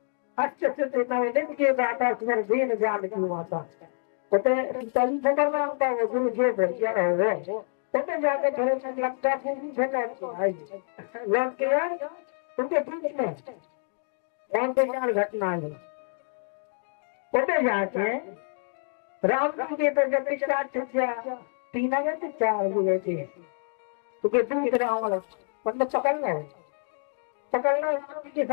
अष्ट सिद्धि निधि के दाता तुम्हारे दीन जान की माता पता तली खबर में आता वो गुरु जो भैया है पता जाके घर में लगता पूरी झगड़ा आई लग के यार तुमके बीच में कौन से चार घटना है पता जाके राम जी के तो जब स्टार्ट हो गया 3 आ गए थे 4 हुए थे तो के दूध राम मतलब पकड़ना राम के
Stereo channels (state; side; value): silent; right; 60 dB below the other